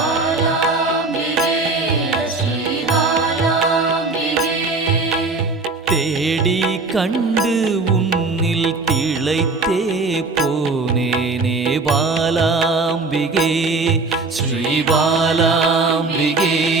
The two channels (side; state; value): left; quieter; 3.6 dB